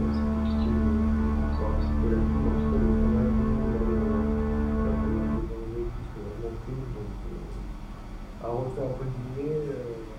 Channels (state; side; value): identical; both; correlation 1.00